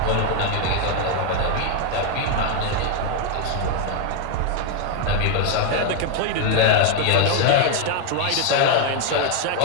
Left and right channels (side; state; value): both; different; correlation 0.00